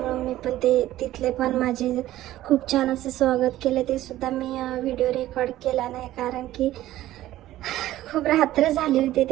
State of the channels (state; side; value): quieter; left; 14.6 dB